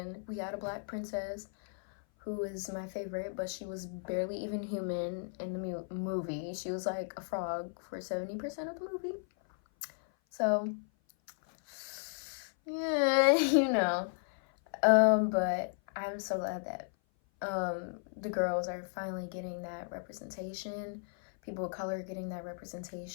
we had a black princess who is my favorite, but she was barely even human in the movie. She was like a frog for 70% of the movie. So yeah, you know. But I'm so glad that the girls are finally getting that representation. People of color getting that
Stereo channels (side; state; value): right; silent; 55 dB below the other